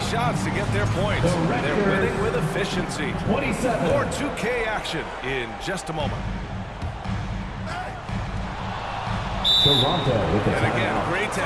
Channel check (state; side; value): identical; both; correlation 1.00